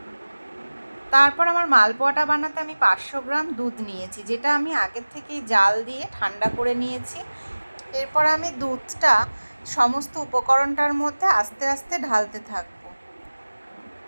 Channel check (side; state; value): both; inverted; correlation -1.00